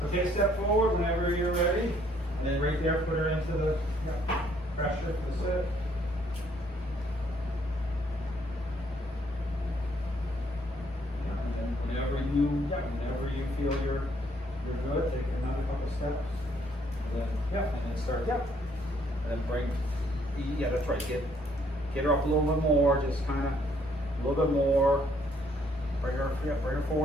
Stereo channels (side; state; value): both; normal; correlation 0.67